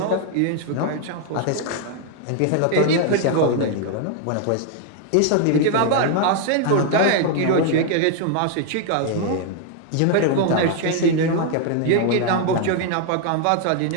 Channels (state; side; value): different; both; correlation 0.00